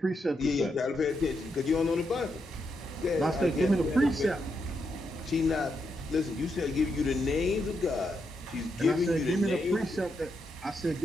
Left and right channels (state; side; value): normal; both; correlation 0.82